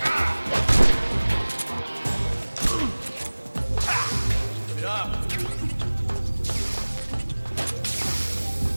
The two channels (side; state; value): both; inverted; correlation -1.00